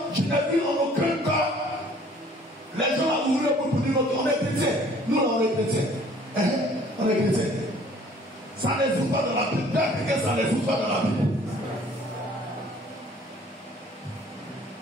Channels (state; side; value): normal; both; correlation 0.55